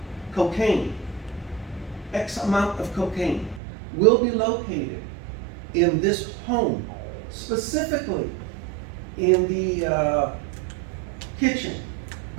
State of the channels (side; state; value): left; drops out; at 3.6 s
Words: cocaine, X amount of cocaine, will be located in this home, specifically in the kitchen,